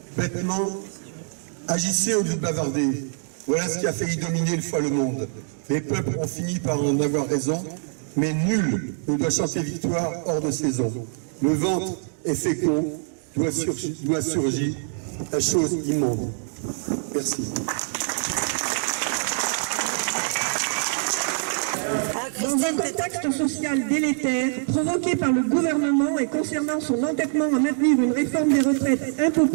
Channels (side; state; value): left; silent; digital silence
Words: Bêtement, agissez au lieu de bavarder. Voilà ce qui a failli dominer une fois le monde. Les peuples ont fini par en avoir raison, mais nul on doit chanter victoire hors de saison. Le ventre est fécond, doit surgir la chose immonde. Merci. Dans un contexte social délétère, provoqué par le gouvernement et concernant son entêtement à maintenir une réforme des retraites